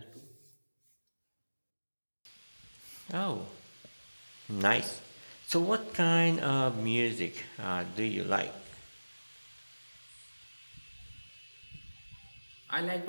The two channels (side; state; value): both; inverted; correlation -1.00